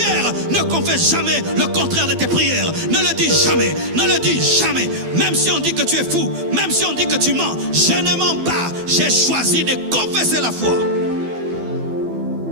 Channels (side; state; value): left; late; 12 ms